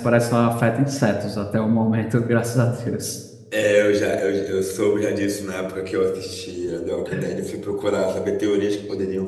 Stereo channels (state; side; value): identical; both; correlation 1.00